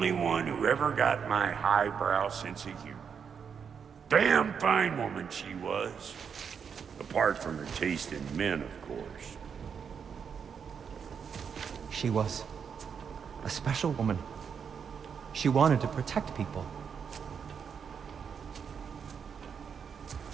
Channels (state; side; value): quieter; left; 6.8 dB